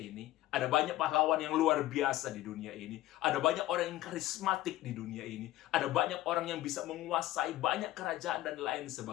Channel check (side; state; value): right; quieter; 15.6 dB